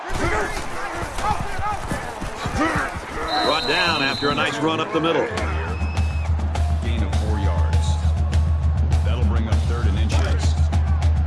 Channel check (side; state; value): both; identical; correlation 1.00